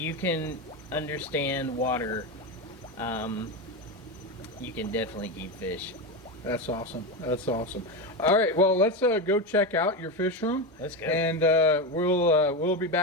can understand water, you can definitely keep fish. That's awesome. That's awesome. All right, well, let's go check out your fish room. Let's go. And we'll be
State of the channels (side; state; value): both; normal; correlation 0.15